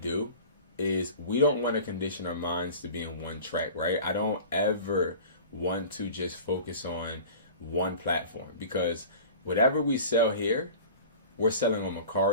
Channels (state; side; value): inverted; both; correlation -0.39